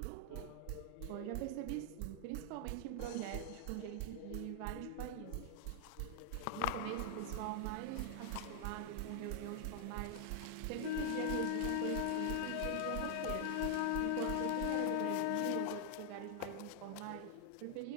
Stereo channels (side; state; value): both; different; correlation 0.00